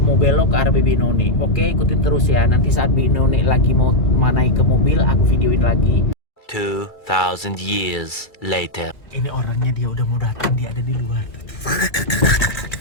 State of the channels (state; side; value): late; right; 2.3 ms